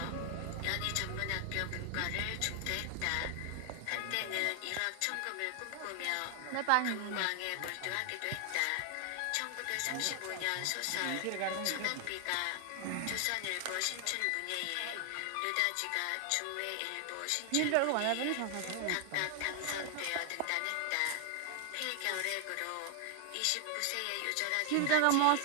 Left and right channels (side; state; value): both; different; correlation 0.00